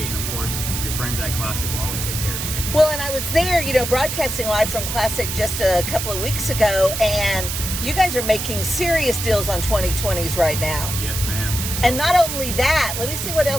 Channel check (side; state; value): right; noise; hiss, 4 dB below the sound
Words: And of course, your friends at Classic will always take care of you. Well, and I was there, broadcasting live from Classic just a couple of weeks ago, and you guys are making serious deals on 2020s right now. Yes, ma'am. And not only that, let me see what